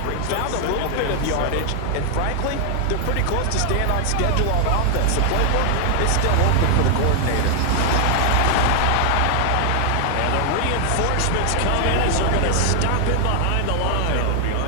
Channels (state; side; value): different; both; correlation 0.00